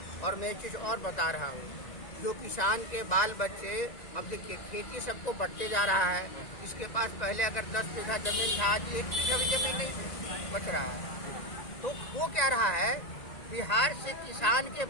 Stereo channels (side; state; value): right; late; 1.9 ms